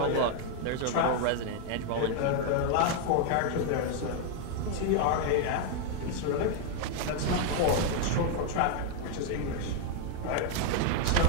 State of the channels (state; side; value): different; both; correlation 0.00